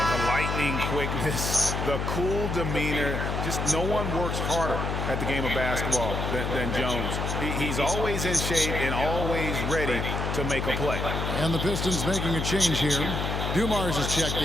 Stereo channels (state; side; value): noise; left; hum, 1 dB below the sound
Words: the lightning quickness, the cool demeanor. Just no one works harder at the game of basketball than Jones. He's always in shape and always ready to make a play. And the Pistons making a change here. Dumars is checked